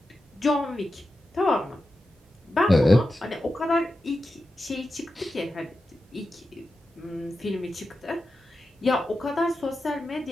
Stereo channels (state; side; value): normal; both; correlation 0.91